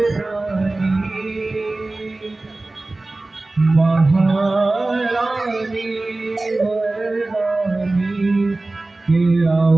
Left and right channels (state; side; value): quieter; left; 3.0 dB